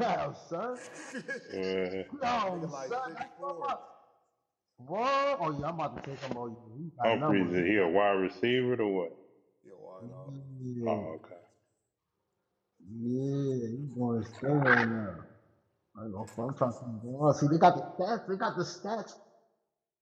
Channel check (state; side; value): identical; both; correlation 1.00